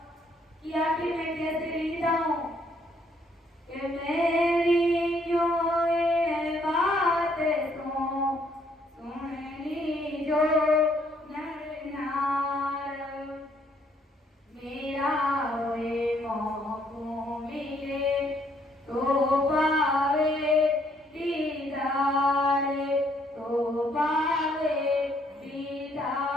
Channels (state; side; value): normal; both; correlation 0.68